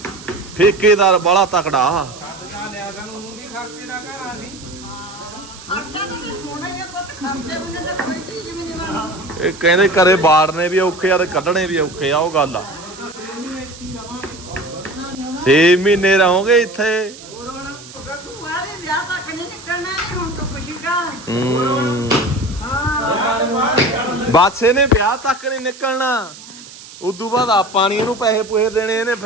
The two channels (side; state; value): right; noise; hiss, 17 dB below the sound